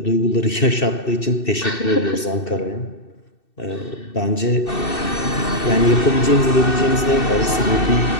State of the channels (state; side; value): late; right; 2.7 ms